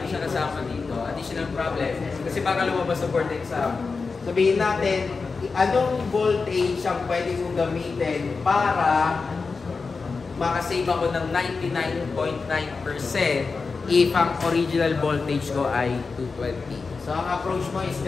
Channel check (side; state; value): right; quieter; 4.5 dB